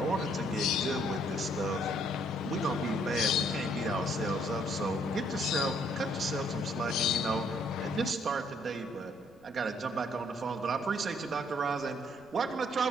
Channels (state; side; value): noise; right; rumble, 28 dB below the sound